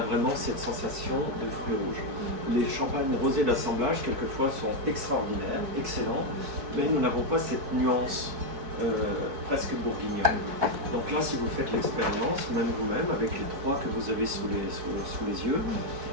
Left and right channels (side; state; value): left; late; 4.6 ms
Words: vraiment cette sensation de fruits rouges. Les champagnes rosés d'assemblage, quelquefois, sont extraordinaires, excellents, mais nous n'avons pas cette nuance presque bourguignonne. Donc là, si vous faites l'expérience, même vous-même, avec les 3 que vous avez sous les yeux,